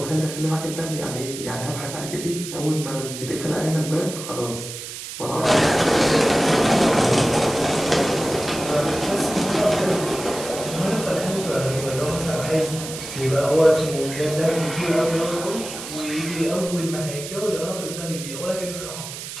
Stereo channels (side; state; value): right; noise; hiss, 9 dB below the sound